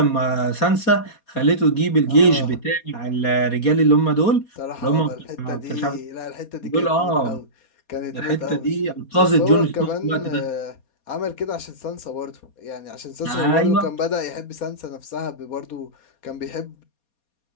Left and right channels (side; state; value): right; late; 4.2 ms